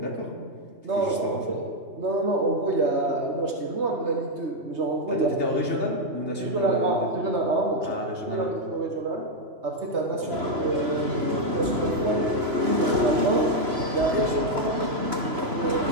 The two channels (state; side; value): late; left; 3.0 ms